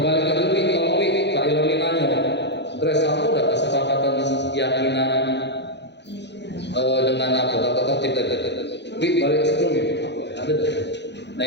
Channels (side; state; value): right; late; 0.50 ms